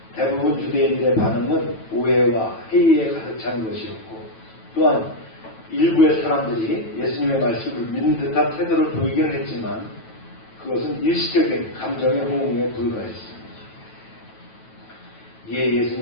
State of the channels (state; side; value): late; right; 9.1 ms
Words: 대부분 유대인들의 반응은 오해와 회의에 가득 찬 것이었고, 또한 일부의 사람들이 예수님의 말씀을 믿는 듯한 태도를 보이긴 했지만 그것은 일시적인 감정의 호응에 불과했습니다. 이에